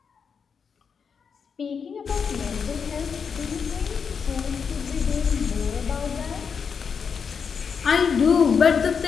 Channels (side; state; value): right; quieter; 6.2 dB